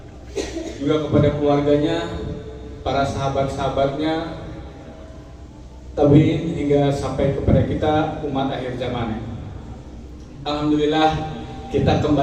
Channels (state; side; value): identical; both; correlation 1.00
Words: juga kepada keluarganya, para sahabat-sahabatnya, tabi'in hingga sampai kepada kita umat akhir zaman. Alhamdulillah kita